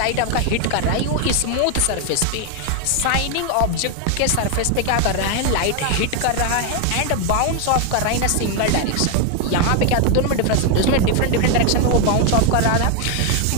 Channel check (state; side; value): different; both; correlation 0.01